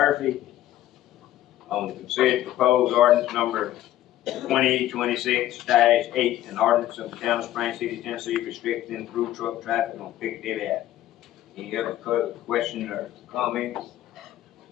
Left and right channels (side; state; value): right; quieter; 13.6 dB